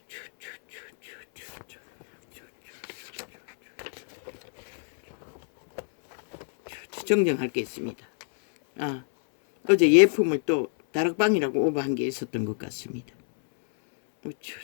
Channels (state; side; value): silent; right; 60 dB below the other